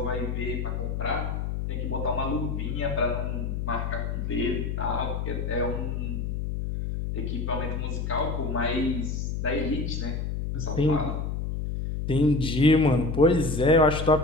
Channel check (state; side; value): noise; left; hum, 2 dB below the sound